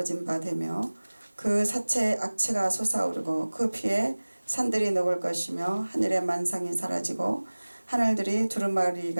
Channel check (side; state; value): both; inverted; correlation -1.00